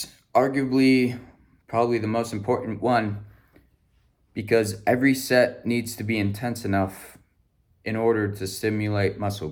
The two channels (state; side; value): identical; both; correlation 1.00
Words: arguably probably the most important one because every set needs to be intense enough in order to stimulate muscle